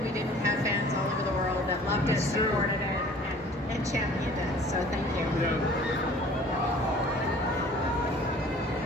we didn't have fans all over the world that loved it, supported it, and championed it. So thank you. Yeah.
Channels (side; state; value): both; normal; correlation 0.49